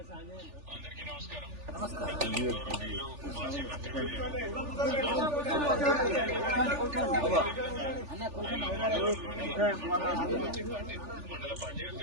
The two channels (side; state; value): left; late; 3.4 ms